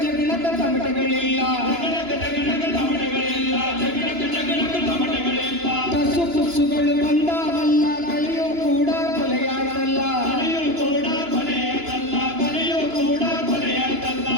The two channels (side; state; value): left; late; 2.9 ms